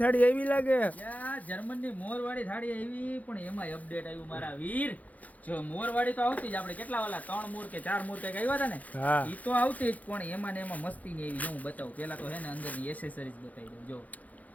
થાળી એવી લાગે. જર્મન ની મોરવાડી થાળી એવી, પણ એમાં અપડેટ આવ્યું મારા વીર. જો મોરવાડી તો આવતી જ, આપણે કેટલા વાલા 3 મોર કે 4 મોર કઈક આવ્યા હતા ને, ઈ તો આવતી જ, પણ એમાં ને એમાં મસ્તી ની એવી. હું બતાવું પેલા તો હે ને અંદર ની એસેસરીઝ બતાવી દઉં. જો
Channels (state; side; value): late; right; 0.076 ms